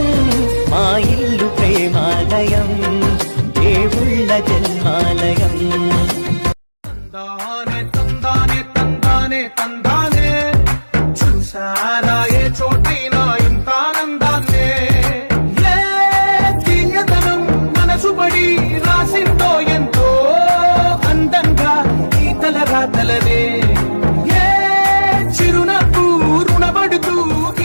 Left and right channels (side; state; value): both; inverted; correlation -1.00